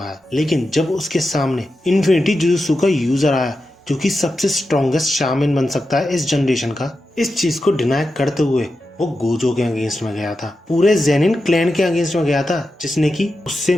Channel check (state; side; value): normal; both; correlation 0.90